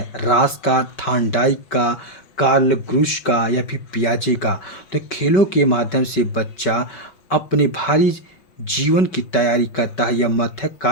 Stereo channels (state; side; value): late; right; 5.2 ms